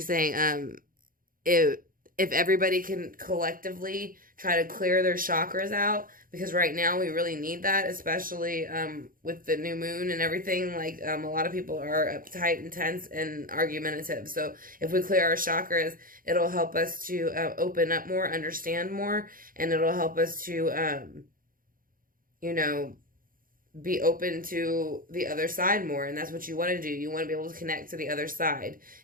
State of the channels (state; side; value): late; left; 0.41 ms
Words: saying. If everybody can collectively try to clear their chakras out, because right now we really need that, especially with the new moon and everything. Like, a lot of people are uptight and tense and argumentative. So if we clear our chakras, it'll help us to open up more, understand more, and it'll help us to, you know, be open to the other side more. And that's what you want to do. You want to be able to connect to the other side,